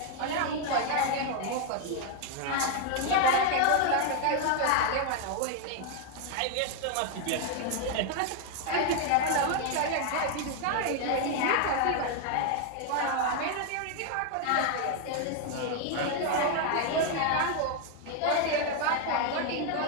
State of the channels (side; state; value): both; different; correlation 0.01